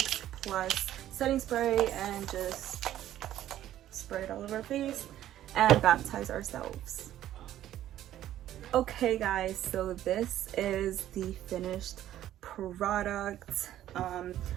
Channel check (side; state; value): left; quieter; 12.6 dB